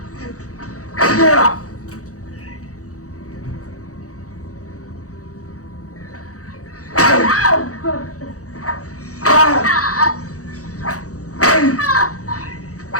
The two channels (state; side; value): late; right; 0.65 ms